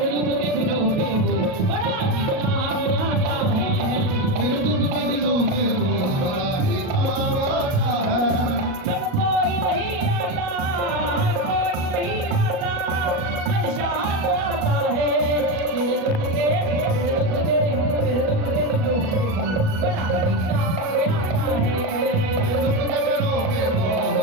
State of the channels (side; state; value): left; late; 37 ms